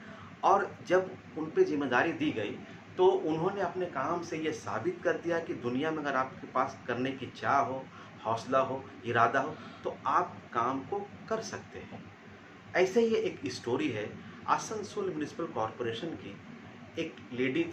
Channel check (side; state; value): both; identical; correlation 1.00